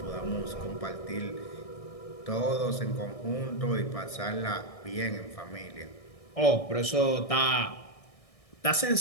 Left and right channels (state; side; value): late; right; 1.6 ms